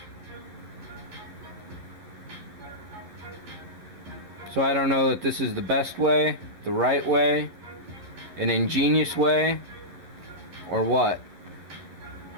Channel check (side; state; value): left; late; 11 ms